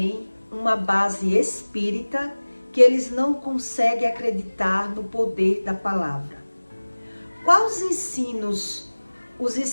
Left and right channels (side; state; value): both; inverted; correlation -1.00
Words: uma base espírita que eles não conseguem acreditar no poder da palavra? Quais ensinos os